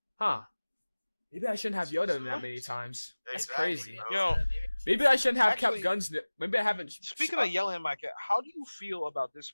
huh, maybe I shouldn't have yelled at him that many times. That's crazy. Yo, Maybe I shouldn't have Actually, kept guns. Maybe I haven't. speaking of yelling at my kid, how do you feel about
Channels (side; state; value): both; inverted; correlation -1.00